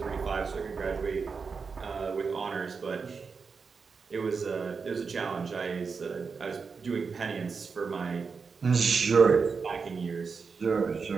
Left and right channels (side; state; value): left; quieter; 5.2 dB